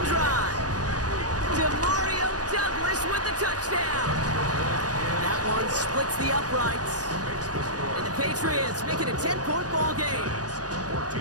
drive. DeMario Douglas with the touchdown. That one splits the uprights. And the Patriots make it a 10-point ball game.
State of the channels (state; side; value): late; left; 0.68 ms